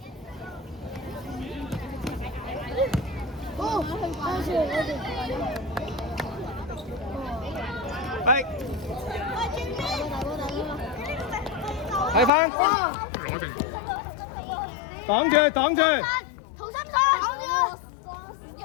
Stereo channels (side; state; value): right; drops out; at 12.3 s